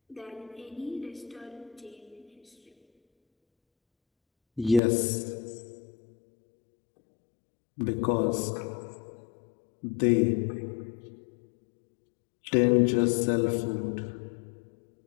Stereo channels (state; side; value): drops out; right; at 4.8 s